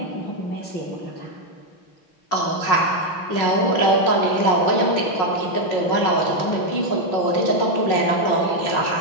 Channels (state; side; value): late; right; 5.5 ms